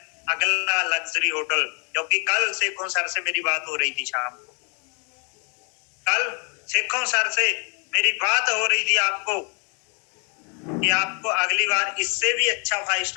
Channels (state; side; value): quieter; right; 37.1 dB